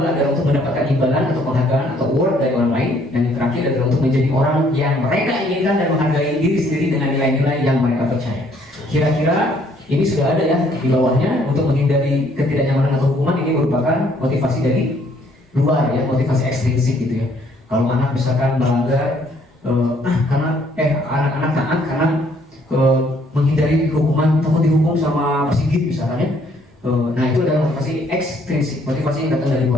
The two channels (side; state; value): both; normal; correlation 0.64